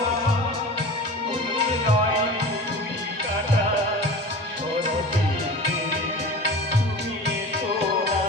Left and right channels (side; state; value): both; normal; correlation 0.35